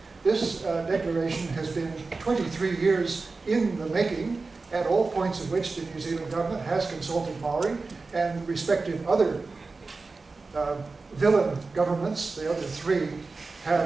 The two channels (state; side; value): quieter; left; 3.9 dB